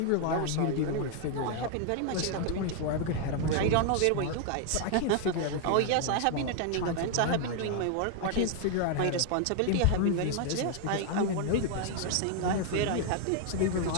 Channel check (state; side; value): different; both; correlation 0.00